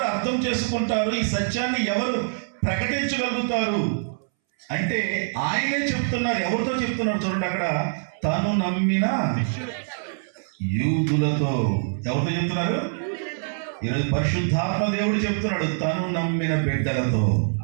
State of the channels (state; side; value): silent; left; 62 dB below the other